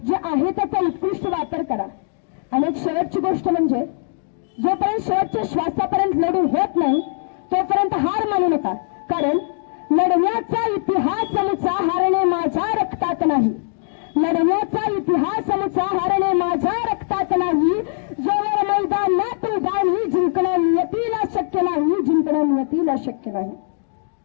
जे आहे त्याचा उत्कृष्ट वापर करा. आणि एक शेवटची गोष्ट म्हणजे, जोपर्यंत शेवटच्या श्वासापर्यंत लढू होत नाही तोपर्यंत हार मानू नका, कारण लढण्याचा इतिहास मुचा हारणे माझ्या रक्तात नाही. लढण्याचा इतिहास मुचा हारणे माझ्या रक्तात नाही. जोवर मैदानात उभारणी जिंकणं नियतीला शक्य नाही, जिंकणं नियतीला शक्य नाही.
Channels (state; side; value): silent; right; digital silence